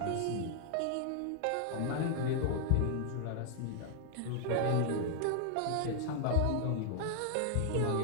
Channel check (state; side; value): different; both; correlation 0.00